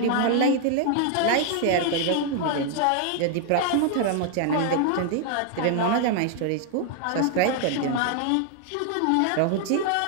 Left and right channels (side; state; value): both; different; correlation 0.00